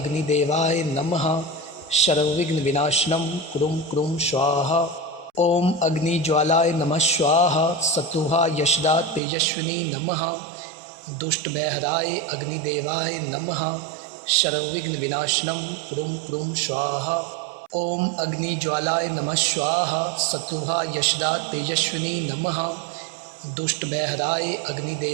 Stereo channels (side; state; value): left; drops out; at 9.2 s